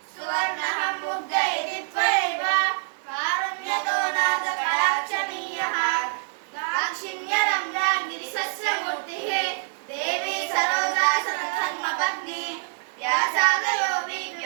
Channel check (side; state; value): left; silent; digital silence